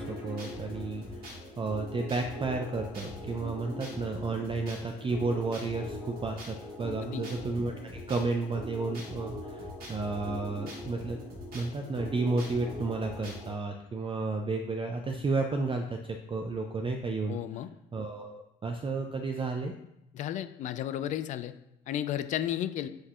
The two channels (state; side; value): normal; both; correlation 0.64